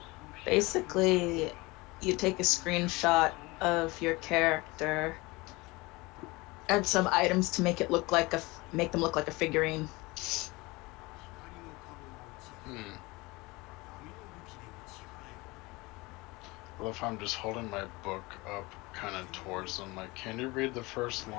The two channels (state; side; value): quieter; right; 23.3 dB